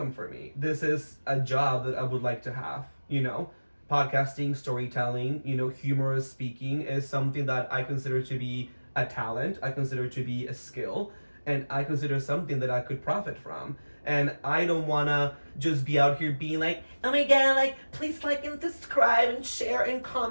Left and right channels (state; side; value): inverted; both; correlation -1.00